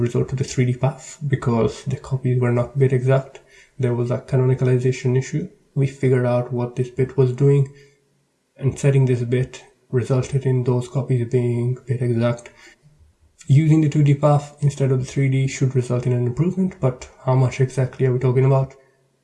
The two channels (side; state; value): both; identical; correlation 1.00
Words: to the 3D path because the copies were not bit exact. There was a canonicalization issue. We figured out what this bit was doing, and setting this bit resulted in those copies being bit exact. Using the 2D path instead of the 3D should result in an improvement, but how much exactly are we talking about?